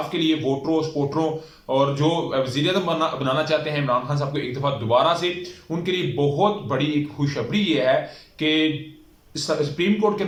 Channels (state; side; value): identical; both; correlation 1.00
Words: के लिए वोटरों स्पोर्टरों और जो वज़ीर आज़म बनाना चाहते हैं इमरान खान साहब को एक दफा दोबारा से, उनके लिए बहुत बड़ी एक खुशखबरी ये है कि सुप्रीम कोर्ट के